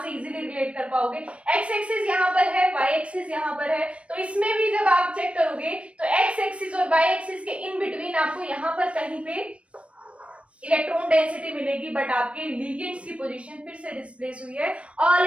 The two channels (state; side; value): late; left; 0.062 ms